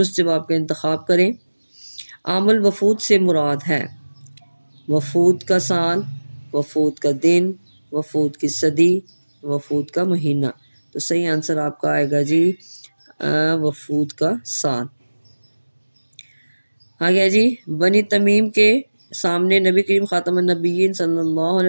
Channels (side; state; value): both; inverted; correlation -1.00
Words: जवाब का इंतखाब करें। आमुल वफूद से मुराद है वफूद का साल, वफूद का दिन, वफूद की सदी, वफूद का महीना। तो सही आंसर आपका आएगा जी वफूद का साल। आ गया जी। बनी तमीम के सामने नबी करीम ख़ातमुन नबीयीन सल्लल्लाहु